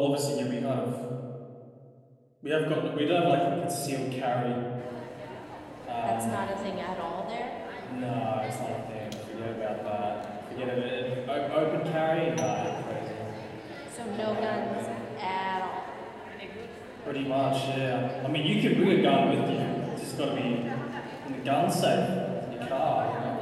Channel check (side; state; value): both; identical; correlation 1.00